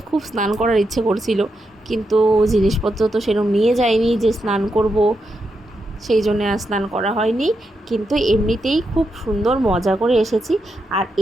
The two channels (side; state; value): both; normal; correlation 0.84